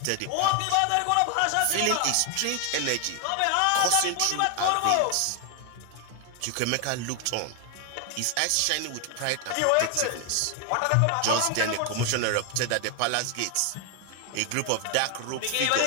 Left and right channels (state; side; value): different; both; correlation 0.01